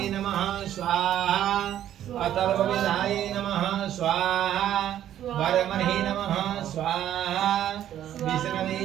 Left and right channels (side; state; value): left; quieter; 11.3 dB